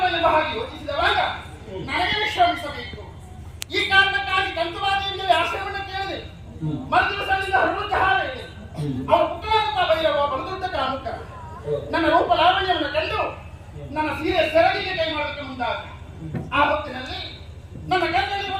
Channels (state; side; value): identical; both; correlation 1.00